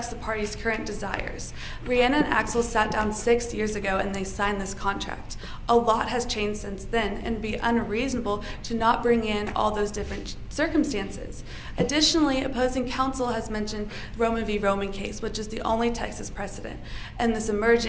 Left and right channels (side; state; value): both; identical; correlation 1.00